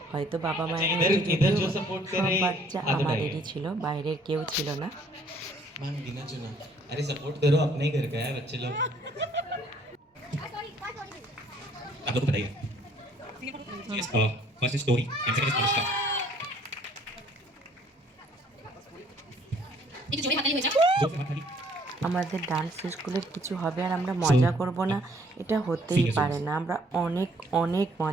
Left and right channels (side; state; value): both; normal; correlation 0.61